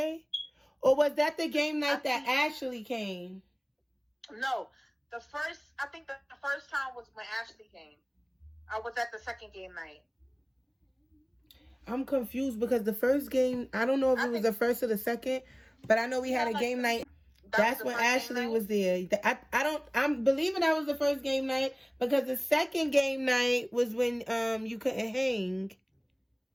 Or was that the game night that Ashley came? No. I think the first time was when Ashley came. I was at the second game night. I'm confused because the first game, I don't know if it was the first or the second, but I know we had a game night. That's when Ashley was there. I'm believing that was the first game night, because the second game night was when you couldn't hang.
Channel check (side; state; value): both; identical; correlation 1.00